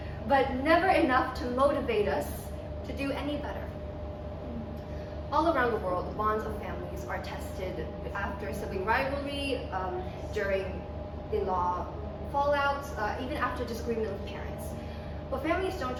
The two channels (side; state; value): both; identical; correlation 1.00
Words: but never enough to motivate us to do any better. All around the world, the bonds of families are tested after sibling rivalry, during in-law fallouts, even after disagreement with parents. But families don't